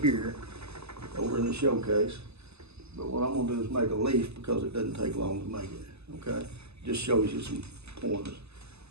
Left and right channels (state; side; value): late; left; 0.79 ms